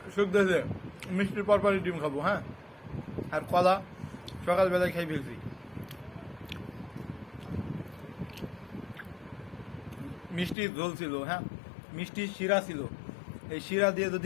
শুক দিয়েছে, মিষ্টির পরপরই ডিম খাবো, হ্যাঁ, আর কলা সকালবেলায় খাই ফেলছি। মিষ্টি ঝোল ছিল, হ্যাঁ, মিষ্টি শিরা ছিল, এই শিরা দিয়ে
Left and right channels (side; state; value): right; drops out; at 10.6 s